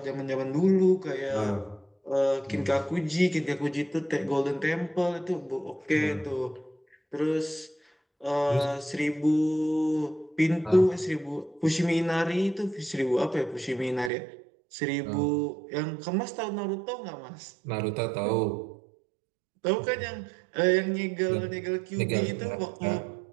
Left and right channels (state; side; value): drops out; left; at 14.1 s